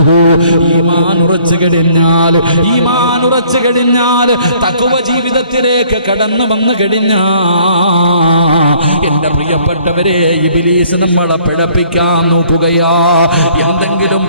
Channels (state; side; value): inverted; both; correlation -0.60